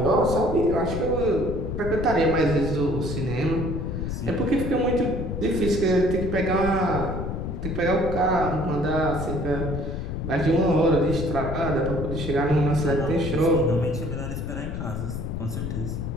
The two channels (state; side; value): noise; left; rumble, 4 dB below the sound